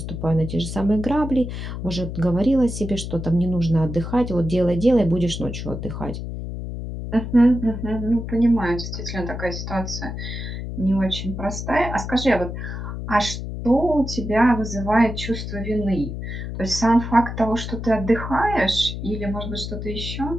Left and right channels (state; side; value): noise; left; hum, 6 dB below the sound